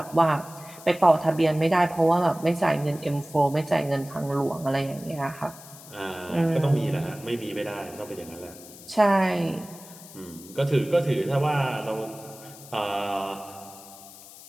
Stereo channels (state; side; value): noise; left; hiss, 18 dB below the sound